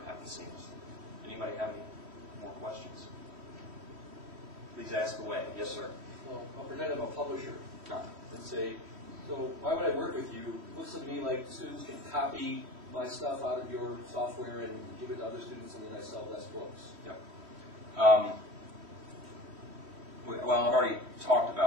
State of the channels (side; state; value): left; late; 3.1 ms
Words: happens seamlessly. Anybody have any more questions? Please ask away. Yes, sir. Well, I'll pretend I'm a publisher No. and say, so why would I work with you? It looks to me like students can copy my stuff out of your software and give it to other students, and then I sell less books. Yep. Well, I've already talked